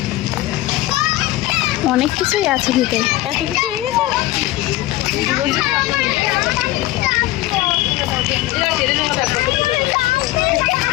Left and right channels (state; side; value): quieter; right; 17.0 dB